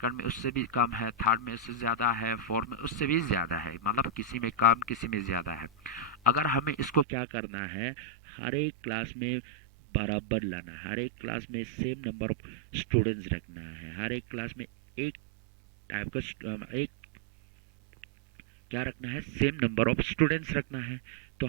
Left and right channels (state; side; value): drops out; left; at 7.1 s